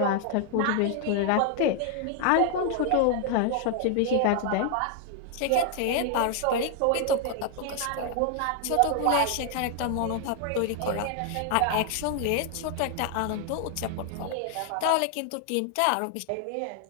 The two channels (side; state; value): both; different; correlation 0.00